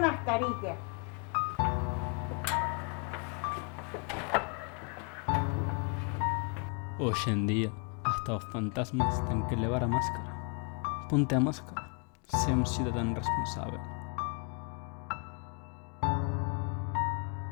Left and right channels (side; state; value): right; quieter; 36.2 dB